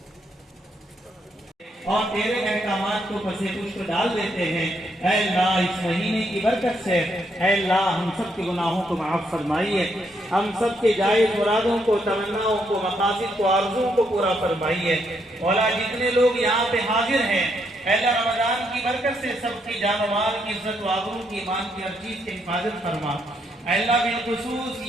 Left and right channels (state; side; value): normal; both; correlation 0.75